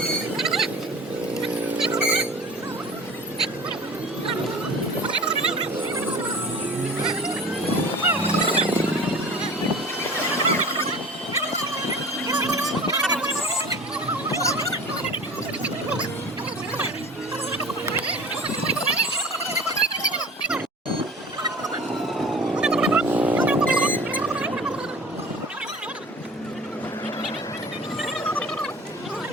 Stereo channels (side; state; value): both; normal; correlation 0.40